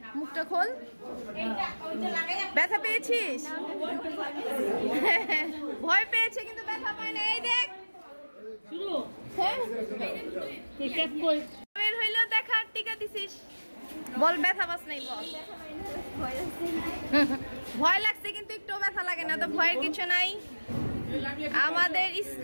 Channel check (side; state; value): both; inverted; correlation -1.00